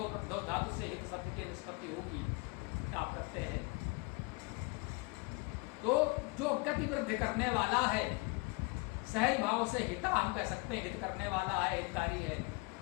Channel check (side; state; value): right; quieter; 27.3 dB